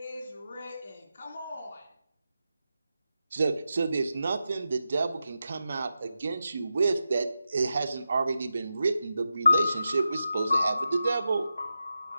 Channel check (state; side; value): inverted; both; correlation -0.90